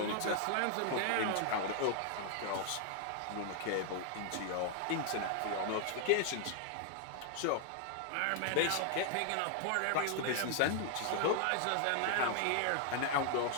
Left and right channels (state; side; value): different; both; correlation 0.00